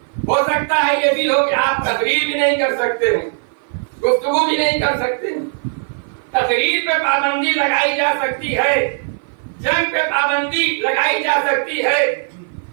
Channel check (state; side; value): silent; left; 55 dB below the other